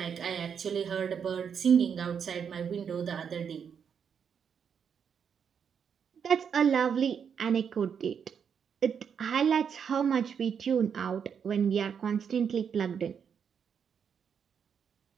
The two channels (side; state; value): left; quieter; 7.2 dB